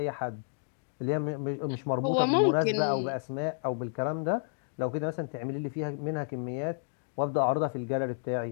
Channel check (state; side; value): silent; right; digital silence